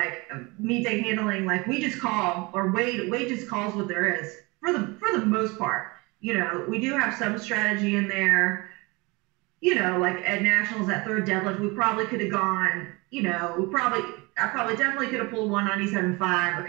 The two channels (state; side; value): quieter; left; 25.8 dB